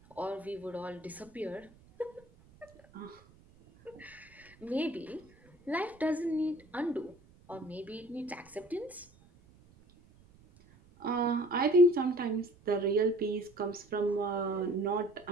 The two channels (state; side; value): noise; right; rumble, 27 dB below the sound